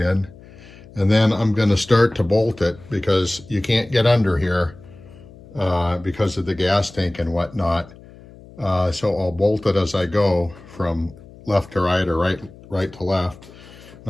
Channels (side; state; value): left; noise; hum, 21 dB below the sound